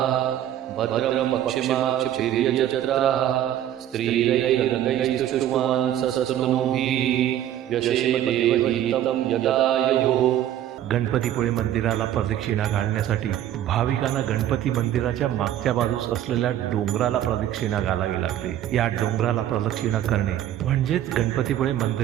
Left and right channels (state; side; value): quieter; left; 11.7 dB